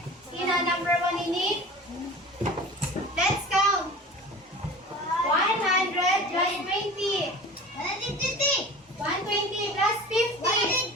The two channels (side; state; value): both; normal; correlation 0.38